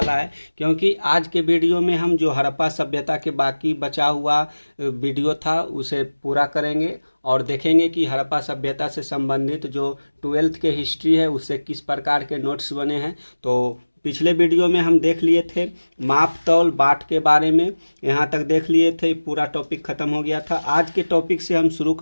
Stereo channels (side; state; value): both; inverted; correlation -1.00